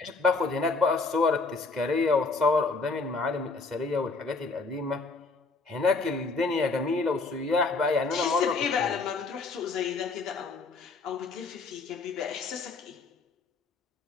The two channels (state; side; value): quieter; right; 4.0 dB